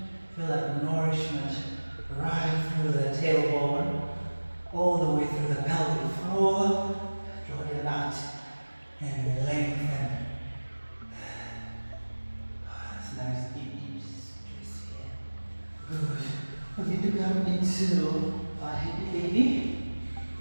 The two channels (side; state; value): both; inverted; correlation -1.00